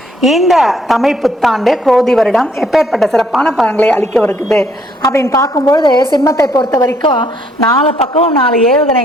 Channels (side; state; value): both; normal; correlation 0.67